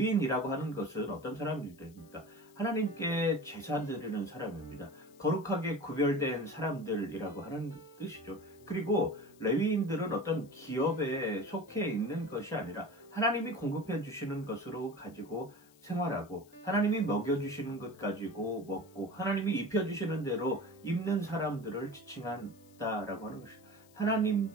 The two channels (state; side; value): noise; left; hiss, 28 dB below the sound